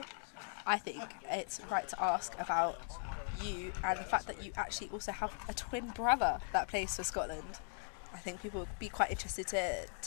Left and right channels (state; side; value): silent; right; 51 dB below the other